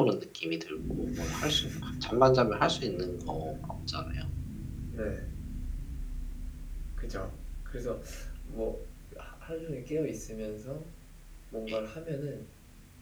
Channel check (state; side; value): identical; both; correlation 1.00